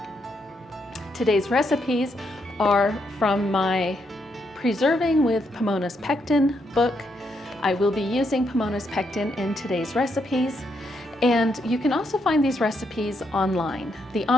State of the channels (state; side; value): normal; both; correlation 0.78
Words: Today's recipes are from my Preserving with Pomona's Pectin book. I will be using Pomona's Pectin in today's recipes. And you can also find these recipes online. The